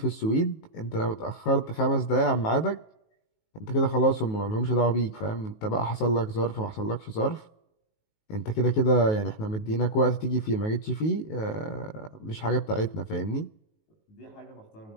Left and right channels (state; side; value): late; right; 19 ms